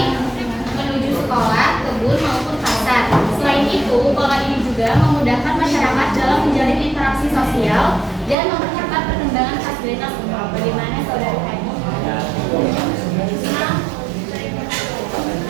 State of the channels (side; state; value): left; drops out; at 8.3 s